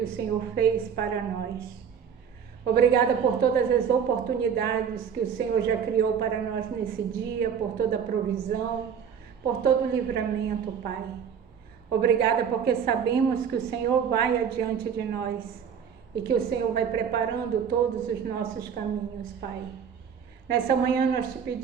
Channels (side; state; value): left; quieter; 7.4 dB